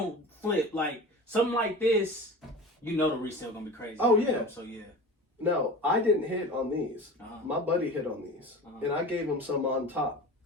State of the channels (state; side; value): normal; both; correlation 0.35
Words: flip. Like something like this, the resale gonna be crazy. Oh yeah. So yeah. No, I didn't hit on these. My buddy hit on these, and I gave him some on top